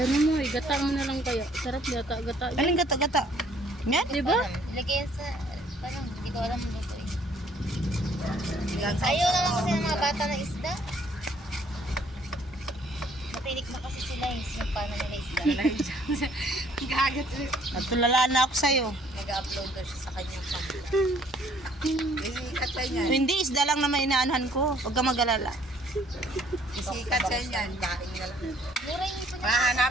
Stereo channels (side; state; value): both; normal; correlation 0.61